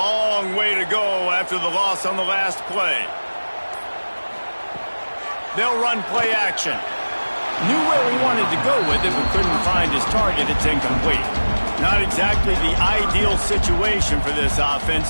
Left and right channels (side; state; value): both; inverted; correlation -1.00